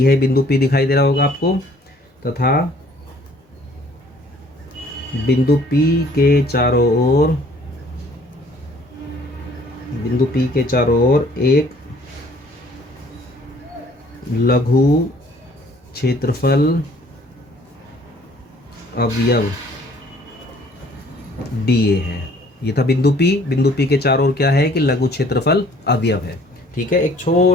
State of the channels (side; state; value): both; normal; correlation 0.57